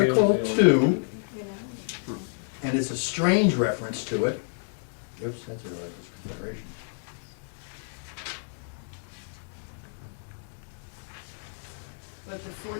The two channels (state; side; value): silent; right; digital silence